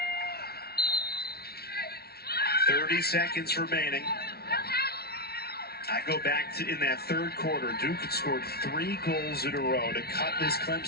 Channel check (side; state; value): right; late; 0.45 ms